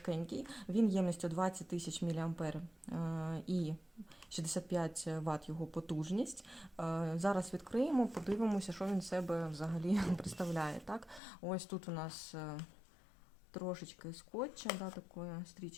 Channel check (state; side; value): drops out; right; at 11.2 s